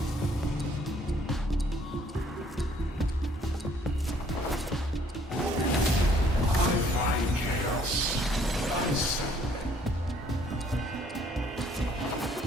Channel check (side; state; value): both; normal; correlation 0.62